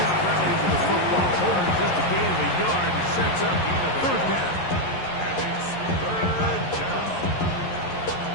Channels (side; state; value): right; late; 11 ms